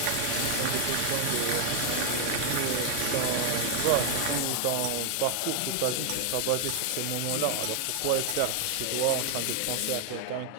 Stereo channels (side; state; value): both; different; correlation 0.00